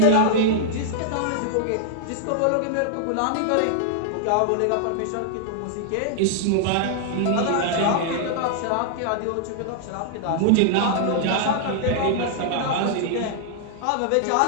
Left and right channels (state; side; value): different; both; correlation -0.01